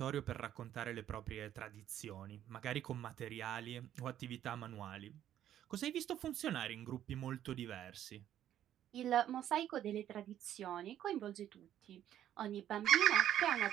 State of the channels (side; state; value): left; quieter; 11.3 dB